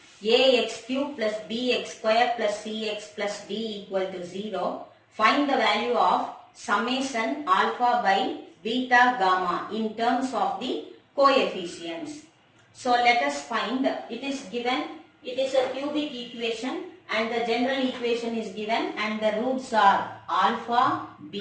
ax cube plus bx square plus cx plus d equal to 0, find the value of summation alpha by beta gamma in terms of the coefficients. So let us find, it is given, it is a cubic equation and the general equation is given and the roots are alpha,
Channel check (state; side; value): identical; both; correlation 1.00